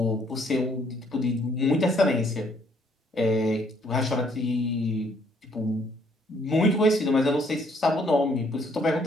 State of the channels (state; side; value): normal; both; correlation 0.66